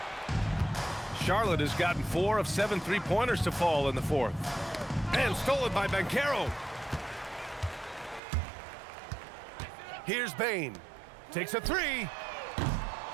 Charlotte has gotten 4 of 7 three-pointers to fall in the fourth. And stolen by Banchero. Here's Bain. Takes a three.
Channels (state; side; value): drops out; left; at 8.2 s